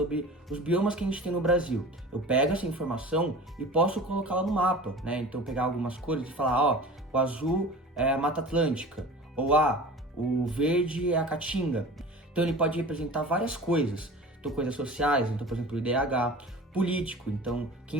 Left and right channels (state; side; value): normal; both; correlation 0.38